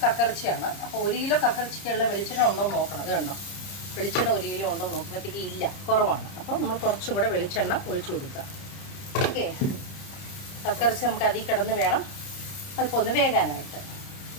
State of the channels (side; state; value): right; late; 30 ms